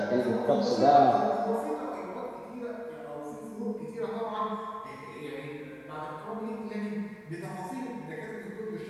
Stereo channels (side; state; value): both; identical; correlation 1.00